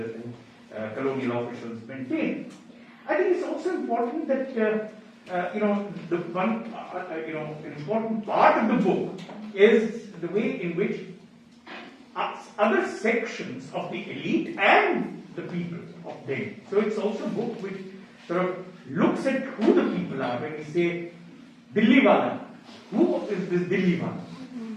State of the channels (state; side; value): identical; both; correlation 1.00